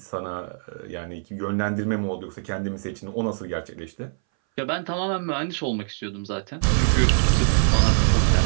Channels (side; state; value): left; silent; 61 dB below the other